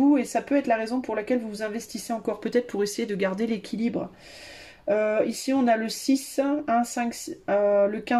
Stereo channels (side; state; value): both; identical; correlation 1.00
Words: Et ça peut être la raison pour laquelle vous vous investissez encore peut-être pour essayer de garder l'équilibre. Ici on a le 6, 1, 5, le